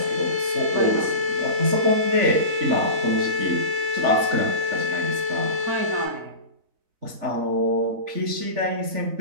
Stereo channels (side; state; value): left; late; 4.0 ms